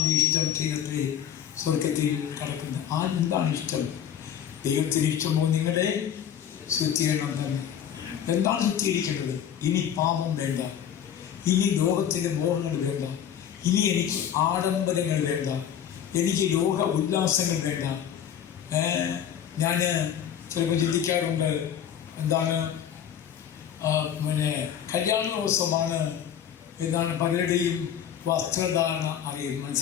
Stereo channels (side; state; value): right; quieter; 9.3 dB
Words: ഇഷ്ടം ചെയ്യട്ടെ സ്വർഗത്തിൽ കിടക്കുന്നത്. എന്താണ് ഇഷ്ടം? ദൈവത്തിന് ഇഷ്ടമോ നിങ്ങളെ ശുദ്ധീകരണം തന്നെ. എന്താണ് ശുദ്ധീകരിക്കേണ്ടത്? ഇനി പാപം വേണ്ട, ഇനി ലോകത്തിൻ്റെ മോഹങ്ങൾ വേണ്ട, ഇനി എനിക്ക് ആഡംബരങ്ങൾ വേണ്ട, എനിക്ക് ലോക ഉല്ലാസങ്ങൾ വേണ്ട. ഞാൻ ചിലപ്പോൾ ചിന്തിക്കാറുണ്ട്, എന്താണ് കല്യാണ ദിവസമാണ് എന്താണ് പലരുടെയും വസ്ത്രധാരണ